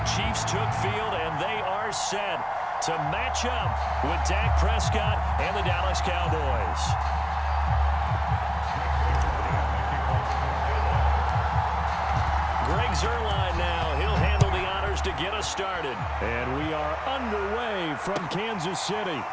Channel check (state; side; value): identical; both; correlation 1.00